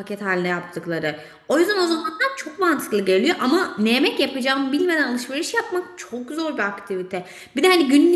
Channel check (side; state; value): both; identical; correlation 1.00